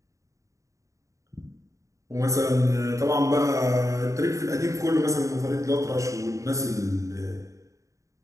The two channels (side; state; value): left; late; 0.15 ms